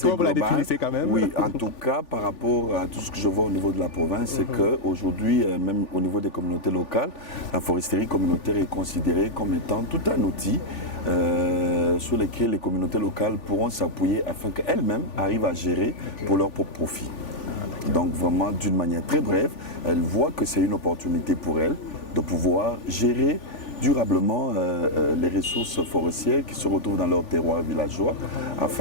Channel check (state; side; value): late; right; 3.4 ms